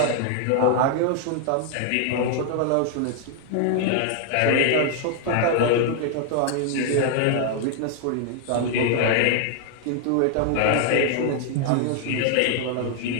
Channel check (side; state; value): both; different; correlation 0.00